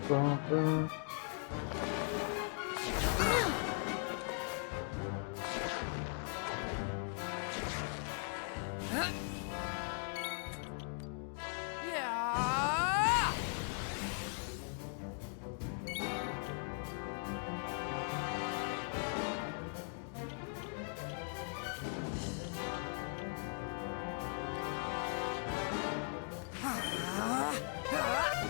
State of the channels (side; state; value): right; silent; 52 dB below the other